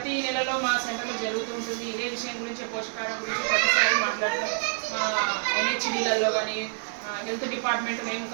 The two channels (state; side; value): silent; left; 60 dB below the other